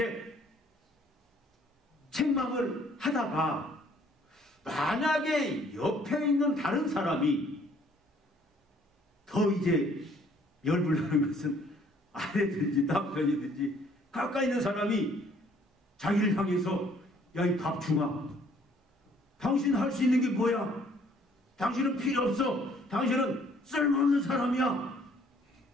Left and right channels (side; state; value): both; normal; correlation 0.61